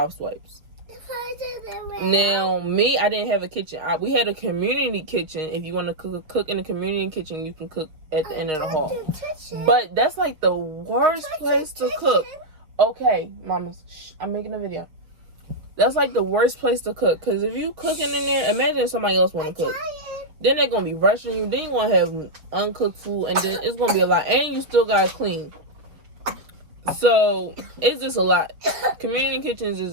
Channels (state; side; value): late; left; 6.5 ms